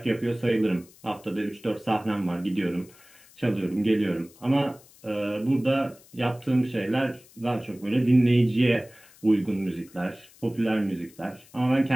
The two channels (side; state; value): left; noise; hiss, 25 dB below the sound